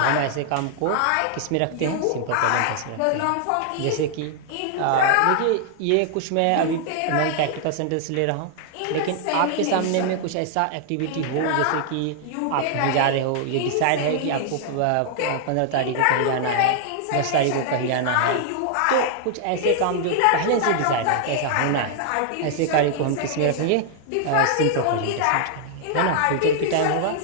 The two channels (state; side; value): different; both; correlation 0.00